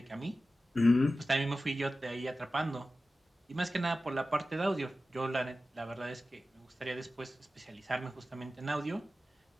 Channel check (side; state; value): both; normal; correlation 0.94